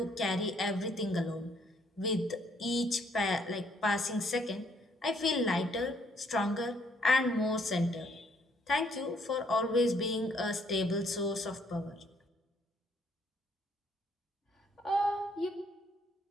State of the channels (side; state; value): both; normal; correlation 0.67